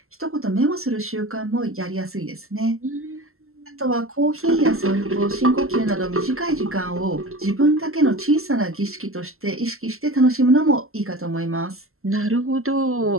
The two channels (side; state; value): left; late; 0.62 ms